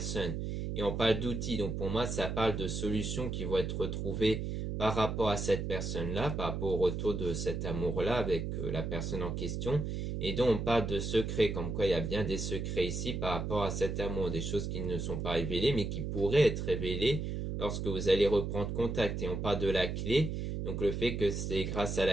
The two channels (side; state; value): right; noise; hum, 3 dB below the sound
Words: Et on parle d'outils, donc pour moi, ça parle de solutions qui vont être retrouvées par rapport à cette personne-là, par rapport au retour de cet amour-là avec la personne en question. Et donc, on parle de secrets, comme quoi il y a bien des secrets ici par rapport à cet amour, des choses qui ne sont pas révélées, mais qui pourraient être révélées lorsque vous allez reprendre contact. Et on parle de la clé Donc le fait que c'est grâce à